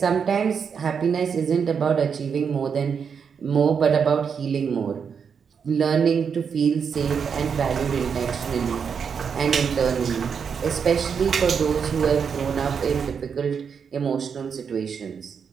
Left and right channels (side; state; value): left; quieter; 6.6 dB